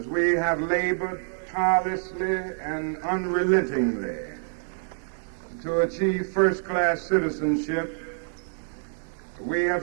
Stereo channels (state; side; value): silent; left; digital silence